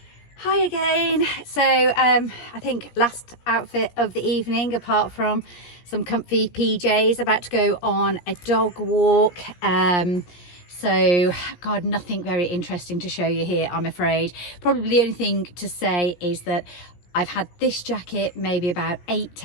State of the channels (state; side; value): late; right; 17 ms